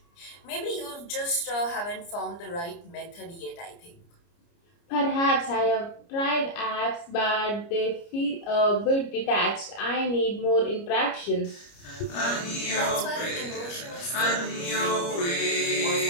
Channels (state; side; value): late; right; 29 ms